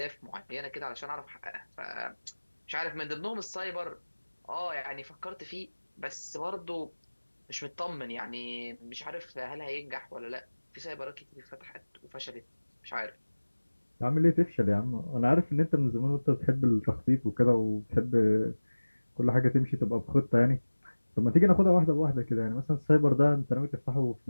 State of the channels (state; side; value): inverted; both; correlation -1.00